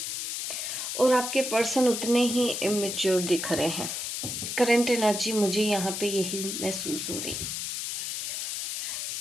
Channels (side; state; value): left; noise; hiss, 3 dB below the sound